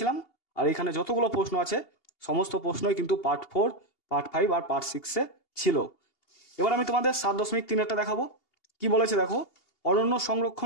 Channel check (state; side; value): late; right; 2.8 ms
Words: আর এখানে যতগুলো প্রশ্ন আছে সমস্ত প্রশ্নই কিন্তু পার্ট 4, পার্ট 5 আর পার্ট 6-এ ছিল। এবার আমি তোমাদের 7.3-এরটা দেখাবো। কি বলেছে দেখো, অরণ্য